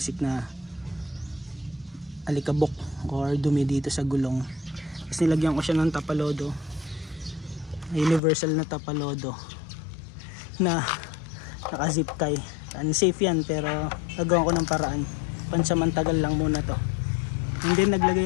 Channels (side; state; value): right; drops out; at 8.2 s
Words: na alikabok or dumi dito sa gulong. Tapos nilagyan ko siya ng tapalodo, universal na tapalodo na naka zip tie. Unsafe yan pero nagawa ko ng paraan, pansamantagal lang muna to. And then